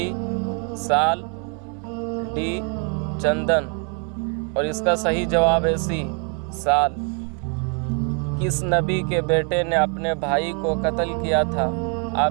साल, डी चंदन। और इसका सही जवाब है सी साल। किस नबी के बेटे ने अपने भाई को कत्ल किया था?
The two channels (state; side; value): quieter; left; 39.0 dB